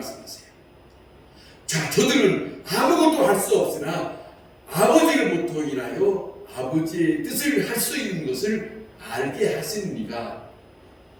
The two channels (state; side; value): identical; both; correlation 1.00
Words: 자, 저들은 아무것도 할 수 없으나 아버지로부터 인하여 아버지의 뜻을 할 수 있는 것을 알게 하신 이가